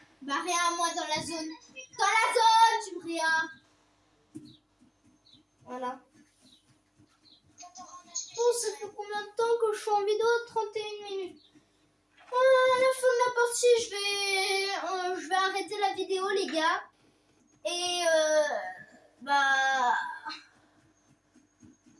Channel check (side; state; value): both; identical; correlation 1.00